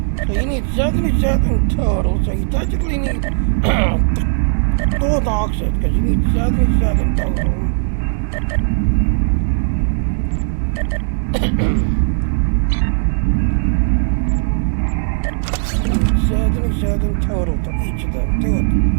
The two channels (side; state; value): left; silent; digital silence